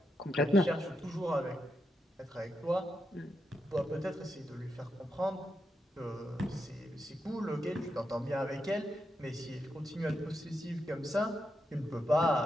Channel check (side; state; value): both; normal; correlation 0.84